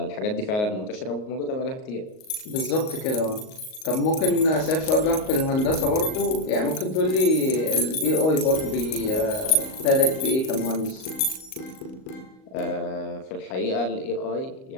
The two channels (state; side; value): late; right; 38 ms